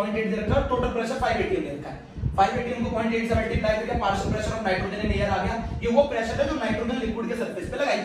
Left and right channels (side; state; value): both; identical; correlation 1.00